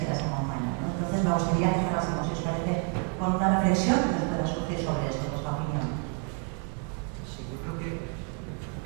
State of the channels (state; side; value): quieter; left; 35.6 dB